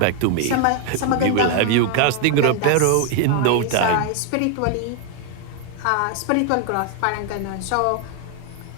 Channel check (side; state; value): both; different; correlation 0.01